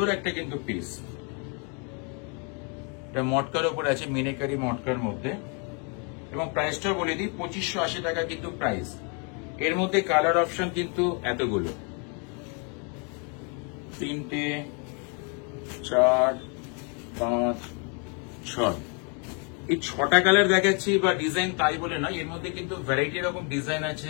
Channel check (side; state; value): right; quieter; 36.8 dB